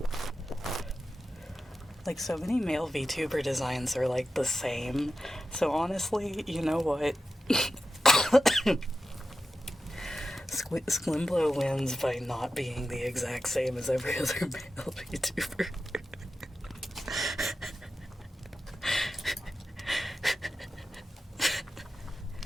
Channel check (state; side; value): normal; both; correlation 0.91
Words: Like, so many male VTuber designs are like the same. So honestly, you know what? Sklimblow wins by not being the exact same as every other male VTuber.